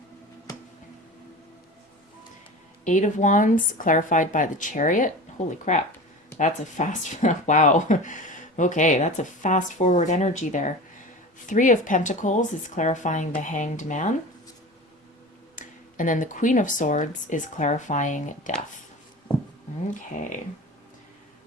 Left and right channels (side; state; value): both; normal; correlation 0.33